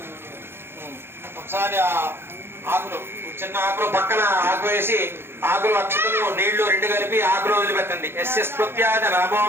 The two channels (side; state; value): left; late; 0.11 ms